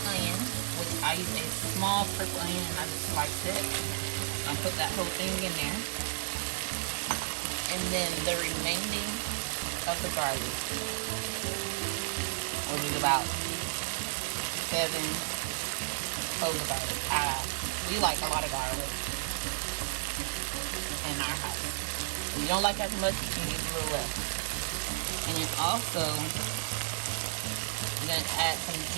onion, which I use a small purple onion and I just sliced it. I'll put that whole thing in there. And then the remaining of the garlic, which is about 7 cloves of garlic. We like a lot of garlic in our house. If you don't like as much, you can use a little less. And then also, I'm going to add some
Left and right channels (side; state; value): left; silent; digital silence